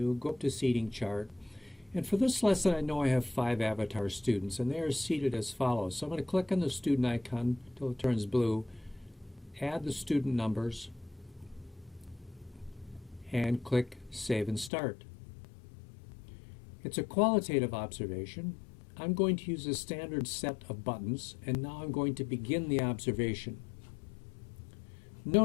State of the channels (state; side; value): drops out; right; at 14.7 s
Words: go up to seating chart. And for this lesson, I know I have 5 avatar students, and they are seated as follows. So I'm going to click on the student icon until it turns blue, add the student numbers, and click Save and Start. It's a qualitative observation. I'm going to use a standard set of buttons, and now I'm going to begin the observation.